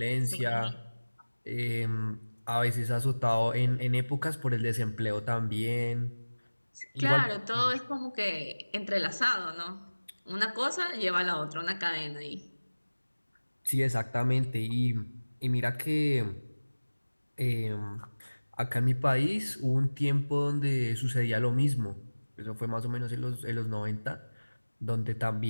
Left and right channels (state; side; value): inverted; both; correlation -1.00